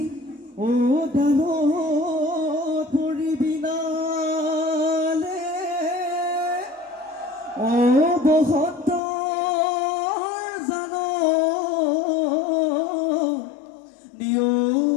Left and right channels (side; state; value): right; drops out; at 9.0 s